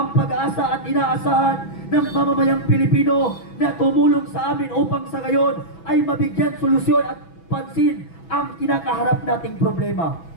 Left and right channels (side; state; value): right; late; 6.1 ms